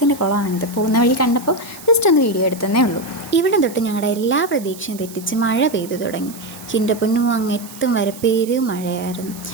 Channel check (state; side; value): noise; right; hiss, 17 dB below the sound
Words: കുളമാണിത്. പോകുന്ന വഴി കണ്ടപ്പോൾ ജസ്റ്റ് ഒന്ന് വീഡിയോ എടുത്തതേ ഉള്ളൂ. ഇവിടെ തൊട്ട് ഞങ്ങളുടെ എല്ലാ പ്രതീക്ഷയും തെറ്റിച്ച് മഴ പെയ്തു തുടങ്ങി. എൻ്റെ പൊന്നു അങ്ങെത്തും വരെ മഴയായിരുന്നു.